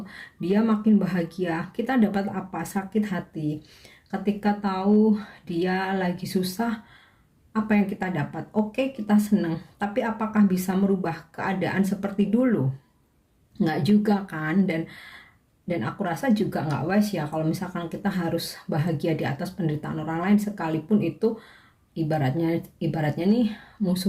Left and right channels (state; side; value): identical; both; correlation 1.00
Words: dia makin bahagia, kita dapat apa? Sakit hati. Ketika tahu dia lagi susah, apa yang kita dapat? Oke, kita senang. Tapi apakah bisa merubah keadaan seperti dulu? Nggak juga kan. Dan aku rasa juga nggak wise ya kalau misalkan kita harus bahagia di atas penderitaan orang lain, sekalipun itu ibaratnya nih